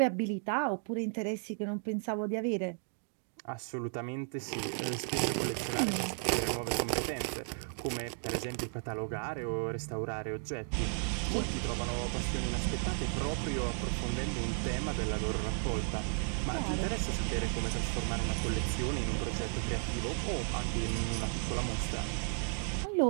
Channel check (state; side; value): silent; left; 55 dB below the other